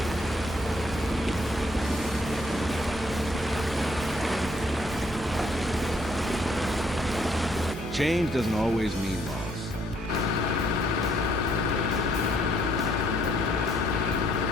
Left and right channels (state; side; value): noise; right; hum, 12 dB below the sound